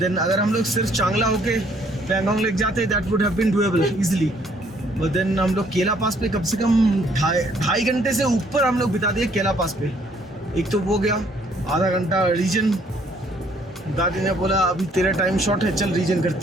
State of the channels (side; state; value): both; normal; correlation 0.64